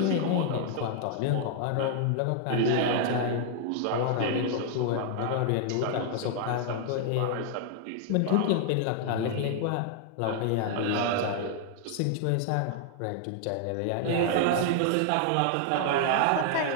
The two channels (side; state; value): both; different; correlation -0.01